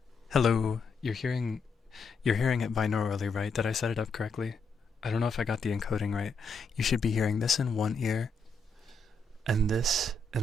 Hello. You're hearing it binaurally, right? Did I set it up correctly? I don't know if I got the encoding right. You should be hearing this in one ear and this in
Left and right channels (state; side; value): quieter; right; 3.7 dB